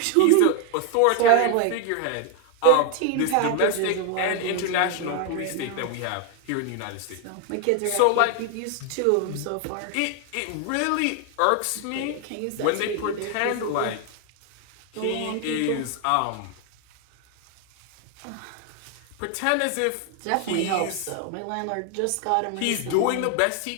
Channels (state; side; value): different; both; correlation 0.00